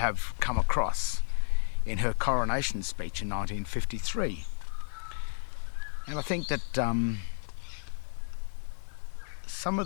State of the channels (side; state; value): right; silent; digital silence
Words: come across in her coronation speech in 1953. And I think that some